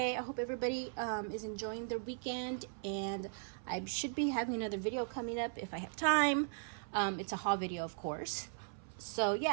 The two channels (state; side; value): silent; left; 52 dB below the other